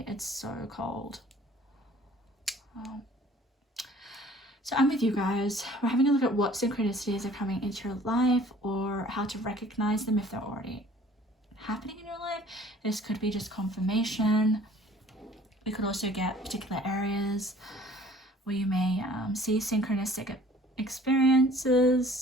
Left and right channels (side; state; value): both; normal; correlation 0.52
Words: It's so cold. So I'm with you guys. We're having a look at what synchronicities are coming into your life or how to recognize them if they're already happening in your life. This could be just confirmation. We could also get particular areas where you may see synchronistic